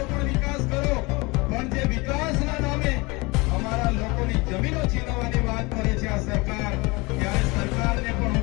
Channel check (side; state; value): right; quieter; 25.3 dB